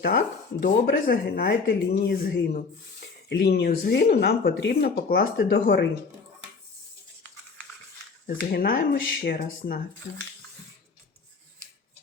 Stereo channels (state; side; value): quieter; right; 4.7 dB